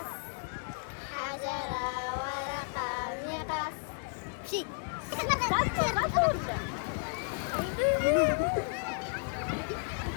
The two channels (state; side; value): quieter; right; 39.7 dB